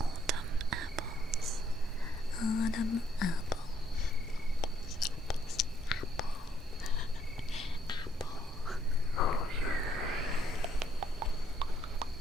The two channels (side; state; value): both; normal; correlation 0.69